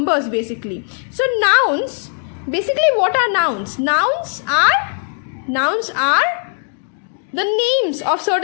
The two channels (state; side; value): silent; right; 56 dB below the other